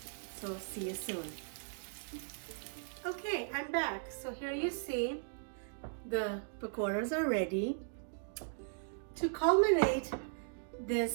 So see you soon. Okay, I'm back. So here you see the pakoras are ready. To culminate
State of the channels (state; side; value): silent; left; digital silence